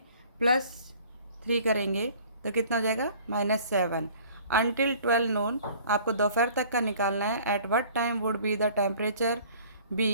+3 करेंगे तो कितना हो जाएगा, -7। अनटिल 12 नून, आपको दोपहर तक का निकालना है। At what time would be the temperature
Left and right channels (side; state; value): both; inverted; correlation -0.51